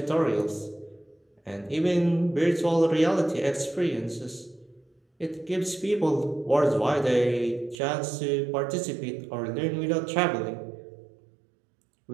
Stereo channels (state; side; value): drops out; left; at 7.8 s